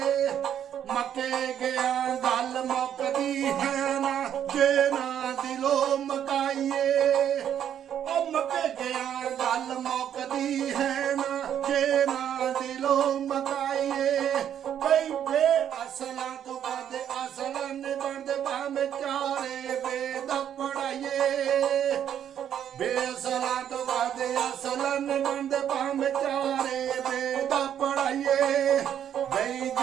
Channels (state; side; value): quieter; left; 9.7 dB